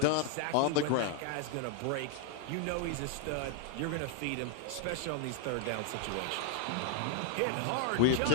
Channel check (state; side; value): different; both; correlation 0.00